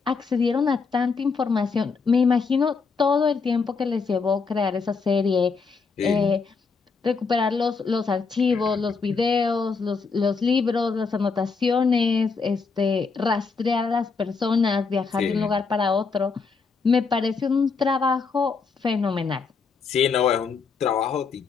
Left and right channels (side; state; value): right; quieter; 4.9 dB